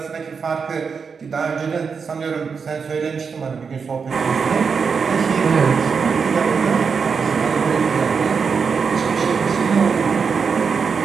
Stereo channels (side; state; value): left; quieter; 5.7 dB